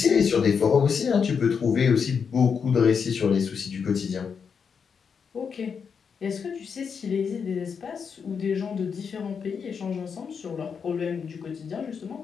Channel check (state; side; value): quieter; right; 6.3 dB